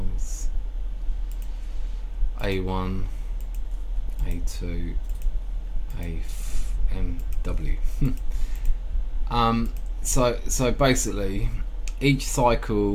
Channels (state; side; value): identical; both; correlation 1.00